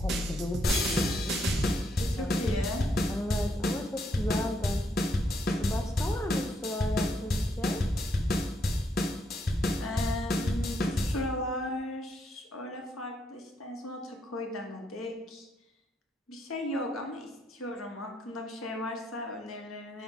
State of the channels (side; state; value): both; normal; correlation 0.76